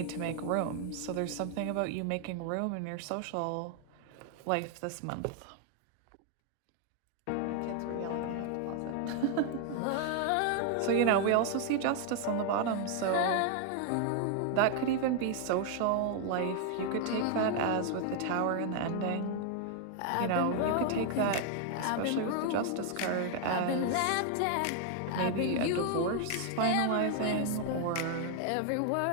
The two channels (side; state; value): both; different; correlation 0.00